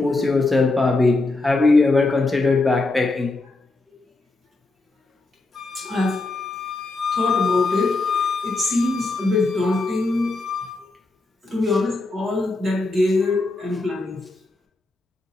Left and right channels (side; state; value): right; quieter; 3.2 dB